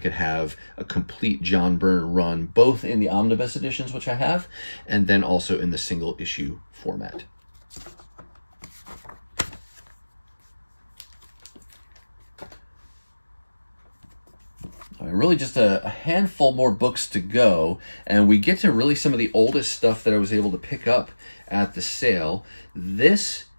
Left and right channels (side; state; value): both; inverted; correlation -1.00